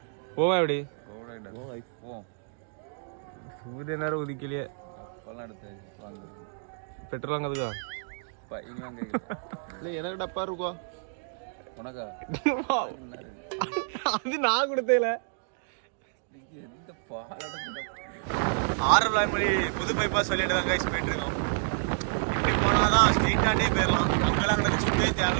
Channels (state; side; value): silent; left; digital silence